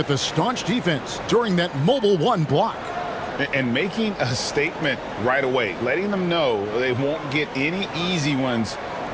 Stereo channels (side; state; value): both; identical; correlation 1.00